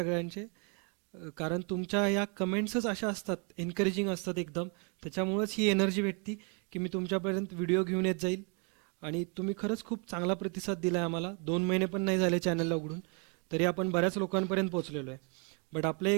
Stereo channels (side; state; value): left; quieter; 37.2 dB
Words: कारण तुमच्या या कमेंट्सच अशा असतात, एन्करेजिंग असतात एकदम. त्याच्यामुळंच ही एनर्जी भेटती की मी तुमच्यापर्यंत व्हिडिओ घेऊन येत जाईल. आणि तुम्ही खरंच खूप चांगला प्रतिसाद दिला आहे आम्हाला. 2 महिने पण नाही झाले चॅनलला उघडून, तरी आपण बऱ्याच लोकांपर्यंत पोहोचलेलो आहे. बट आपलं